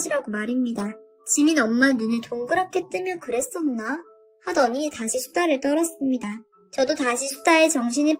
말입니다. 지민 엄마 눈을 동그랗게 뜨며 그랬었나? 하더니 다시 수다를 떨었습니다. 저도 다시 수다에 정신이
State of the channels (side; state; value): both; identical; correlation 1.00